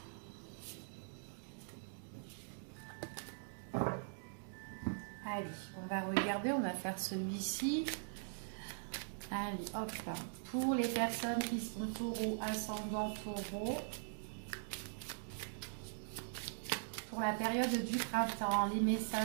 Allez, on va regarder, on va faire celui-ci. Allez, hop, pour les personnes qui sont taureau, ascendant taureau, pour la période du printemps, les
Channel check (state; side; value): silent; left; digital silence